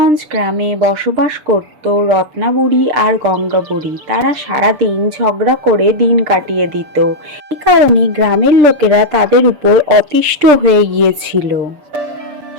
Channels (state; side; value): late; left; 6.7 ms